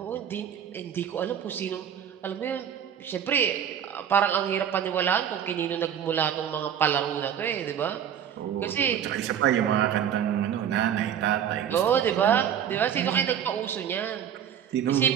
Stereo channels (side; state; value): left; quieter; 9.1 dB